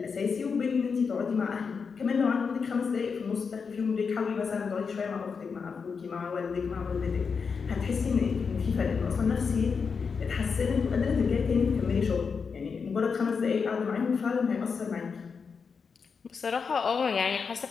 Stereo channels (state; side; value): quieter; right; 5.6 dB